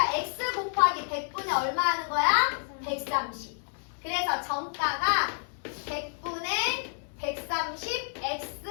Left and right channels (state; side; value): silent; right; 58 dB below the other